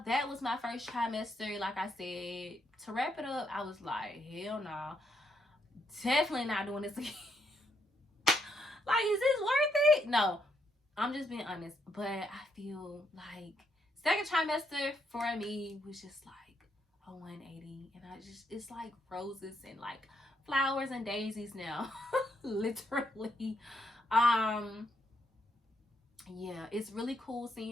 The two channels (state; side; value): normal; both; correlation 0.77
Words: that was my first trimester. Like I said, to wrap it up, I was like, hell no, definitely not doing this again. Like, is this worth it? No, I'm just being honest. But I feel like second trimester for me was just like a 180, and it's like roses and like flowers and daisies now, literally. Um, yeah, it's really cool